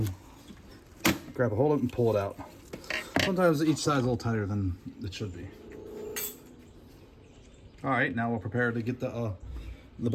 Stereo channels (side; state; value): both; identical; correlation 1.00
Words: grab a hold of it and pull it out. Sometimes each side's a little tighter than it should be. All right, now we're prepared to get the